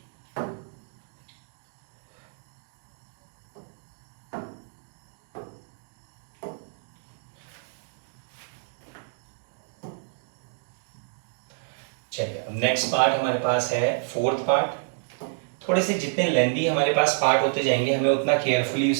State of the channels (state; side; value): silent; left; digital silence